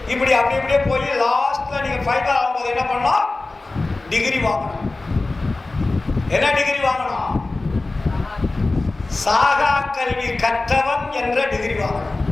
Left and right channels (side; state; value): right; quieter; 3.2 dB